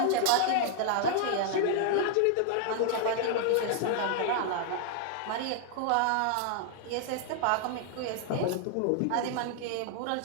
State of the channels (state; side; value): different; both; correlation 0.00